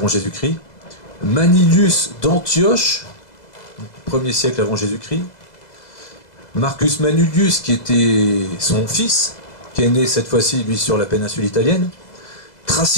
Jésus-Christ, Manilius d'Antioche, 1er siècle avant Jésus-Christ, Marcus Manilius, qui était son fils, qui est né cette fois-ci, lui, sur la péninsule italienne,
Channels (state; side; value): late; right; 2.0 ms